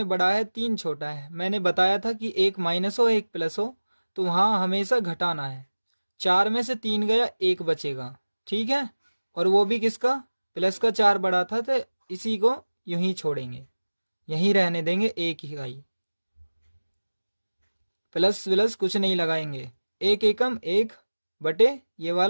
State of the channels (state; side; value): inverted; both; correlation -1.00